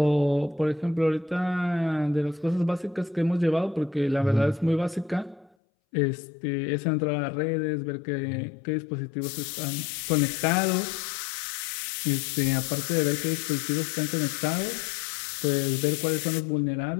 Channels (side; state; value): right; drops out; at 5.5 s